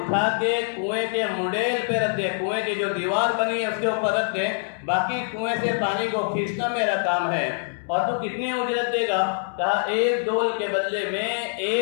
کے کنویں کے منڈیل پہ رکھ دے، کنویں کی جو دیوار بنی ہے اس کے اوپر رکھ دے، باقی کنویں سے پانی کو کھینچنا میرا کام ہے۔ اور تو کتنی اجرت دے گا؟ کہا 1 ڈول کے بدلے میں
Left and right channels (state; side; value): silent; right; digital silence